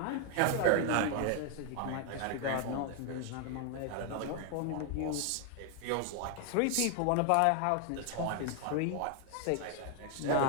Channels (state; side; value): different; both; correlation 0.00